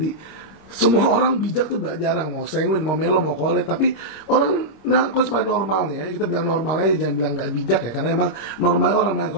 semua orang bijak tuh jarang, mau Sanguine, mau Melo, mau Cole. Tapi orang melankolis pada normalnya ya, kita bilang normalnya jangan bilang nggak bijak ya, karena emang normal orang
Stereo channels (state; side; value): late; right; 26 ms